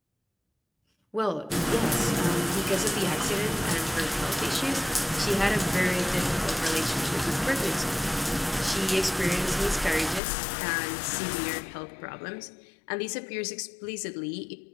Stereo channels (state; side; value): drops out; right; at 10.2 s